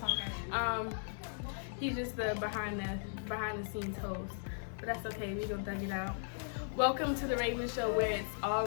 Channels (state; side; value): silent; right; digital silence